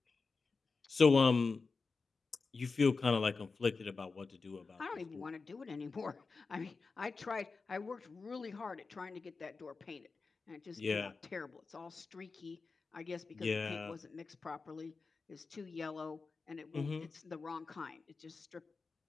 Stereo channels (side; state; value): right; quieter; 4.4 dB